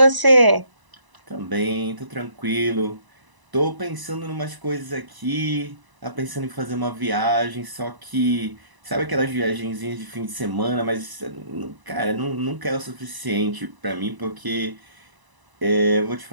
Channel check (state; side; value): late; left; 1.0 ms